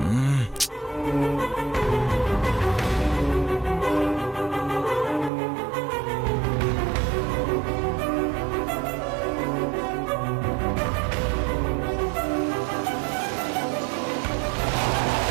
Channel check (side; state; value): left; drops out; at 5.3 s